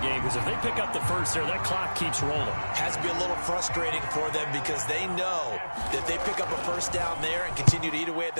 game because if they pick up the first there, that clock keeps rolling. Has to be a little frustrating for them because they know that if they pick up a first down there and continue to eat away at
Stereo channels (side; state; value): both; inverted; correlation -1.00